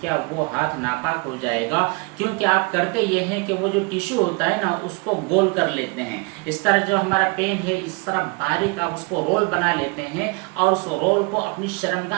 وہ ہاتھ ناپاک ہو جائے گا؟ کیونکہ آپ کرتے یہ ہیں کہ وہ جو ٹیشو ہوتا ہے نا، اس کو گول کر لیتے ہیں۔ اس طرح جو ہمارا پین ہے، اس طرح باریک آپ اس کو رول بنا لیتے ہیں، اور اس رول کو اپنی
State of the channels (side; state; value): left; quieter; 29.7 dB